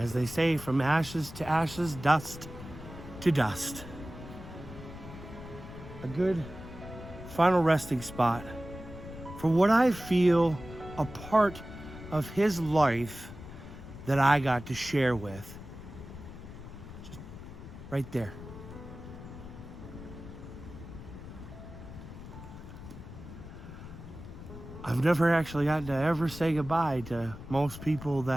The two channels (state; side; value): noise; left; rumble, 13 dB below the sound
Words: they say, from ashes to ashes, dust to dust. A good final resting spot for what I feel a part of his life that I got to share with. Just right there. I've never actually gotten to ever say goodbye to most people